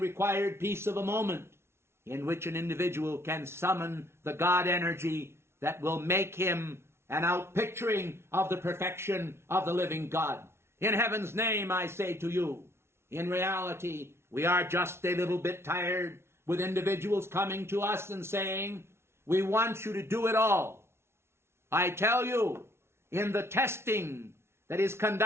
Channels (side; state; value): left; late; 0.12 ms